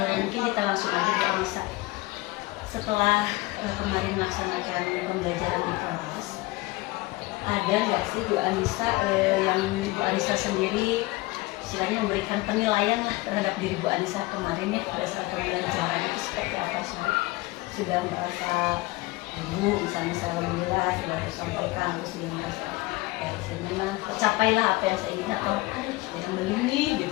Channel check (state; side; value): quieter; right; 20.9 dB